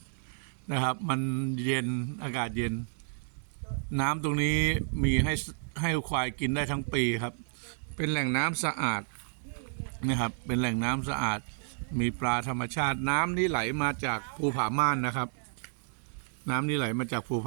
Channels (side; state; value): left; silent; digital silence